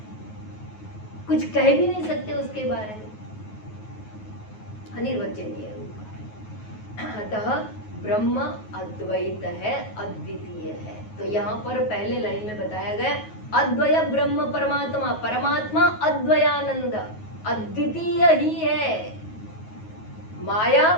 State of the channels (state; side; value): late; right; 9.4 ms